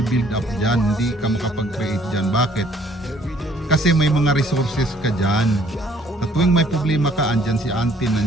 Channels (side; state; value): both; normal; correlation 0.61